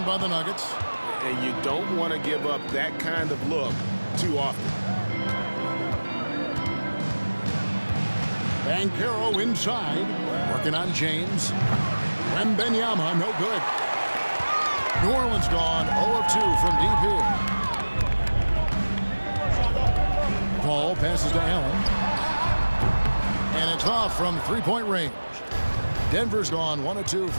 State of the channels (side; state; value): both; inverted; correlation -1.00